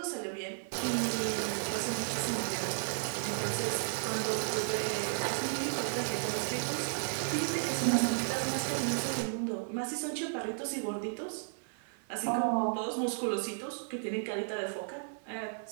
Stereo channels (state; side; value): silent; left; digital silence